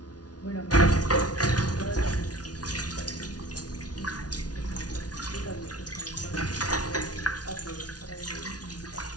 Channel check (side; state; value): right; late; 0.69 ms